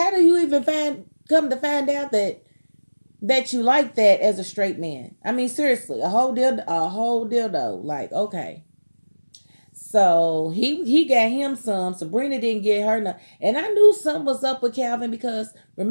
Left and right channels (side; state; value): both; inverted; correlation -1.00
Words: do you even come to find out that you like that as a straight man? I mean, seriously, a whole dildo. Like, okay. So he got him some. Sabrina didn't get her none. And I knew something was up with Calvin because